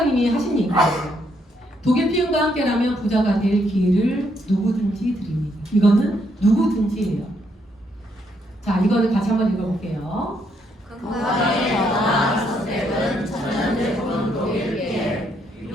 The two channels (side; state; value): both; normal; correlation 0.74